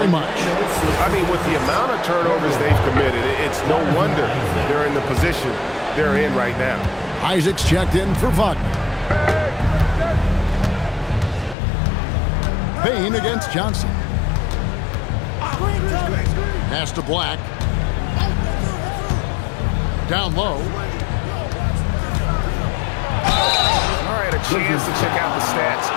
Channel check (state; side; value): drops out; right; at 11.6 s